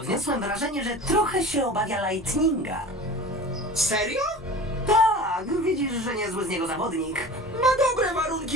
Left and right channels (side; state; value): both; normal; correlation 0.37